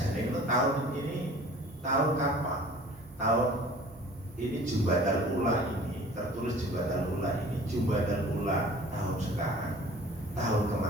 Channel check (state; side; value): normal; both; correlation 0.46